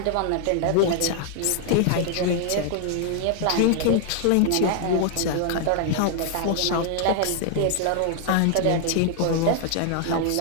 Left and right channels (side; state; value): both; different; correlation 0.00